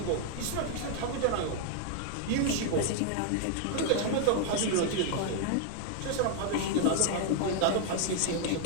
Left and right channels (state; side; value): different; both; correlation 0.00